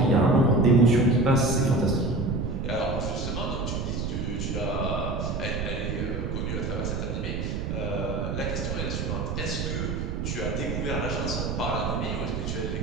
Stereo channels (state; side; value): noise; right; rumble, 2 dB below the sound